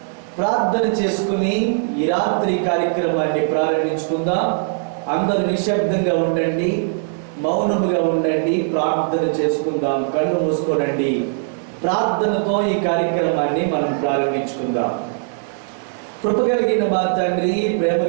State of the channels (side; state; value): left; silent; digital silence